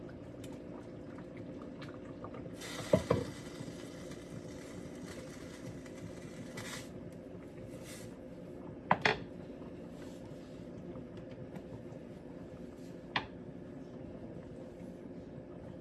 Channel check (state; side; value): identical; both; correlation 1.00